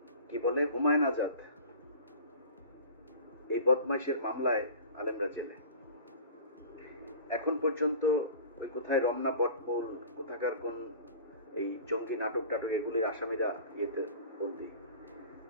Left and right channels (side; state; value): both; inverted; correlation -0.40